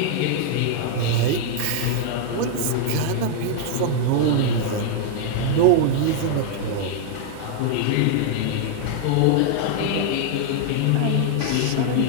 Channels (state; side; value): different; both; correlation 0.00